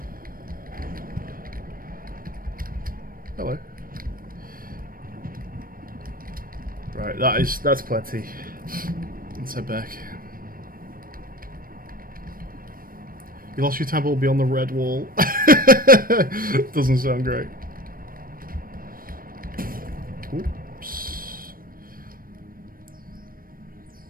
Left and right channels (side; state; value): left; late; 0.41 ms